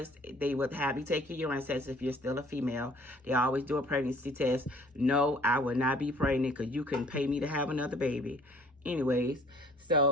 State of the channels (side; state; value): both; normal; correlation 0.55